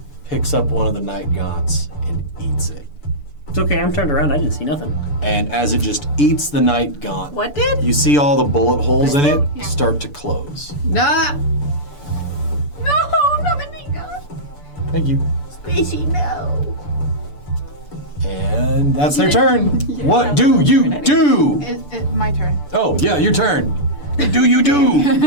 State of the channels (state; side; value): late; right; 6.9 ms